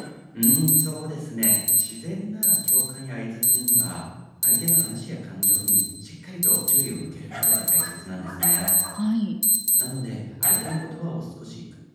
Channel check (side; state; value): both; identical; correlation 1.00